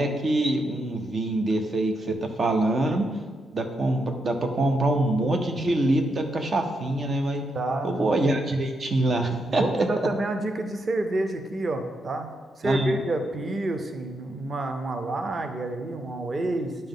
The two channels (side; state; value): both; normal; correlation 0.82